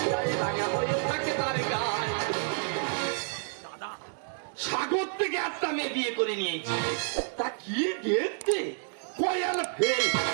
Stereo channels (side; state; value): left; silent; digital silence